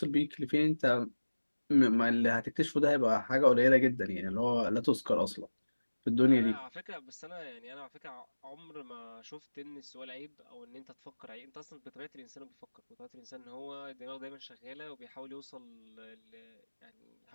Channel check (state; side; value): inverted; both; correlation -1.00